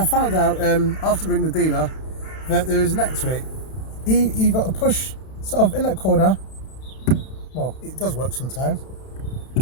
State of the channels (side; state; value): right; late; 32 ms